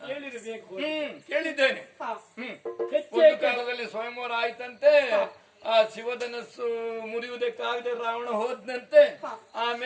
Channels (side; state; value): both; identical; correlation 1.00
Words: ಹೇಳಿರಬೇಕು. ಕೇಳಿದ್ದೇನೆ. ಒಂದು ಕಾಲದಲ್ಲಿ ಸ್ವಯಂವರ ಆಯ್ತಂತೆ, ಆ ಶಿವಧನಸ್ಸು ಮುರಿಯುವುದಕ್ಕಾಗದೆ ರಾವಣ ಹೋದ್ನಂತೆ,